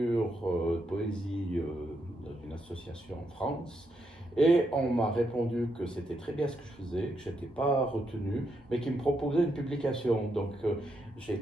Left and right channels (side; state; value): both; normal; correlation 0.80